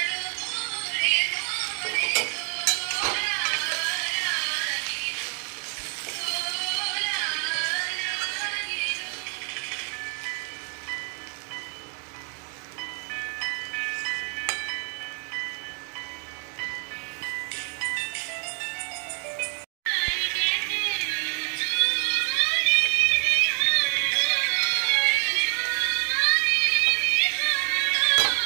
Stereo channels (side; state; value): left; quieter; 35.0 dB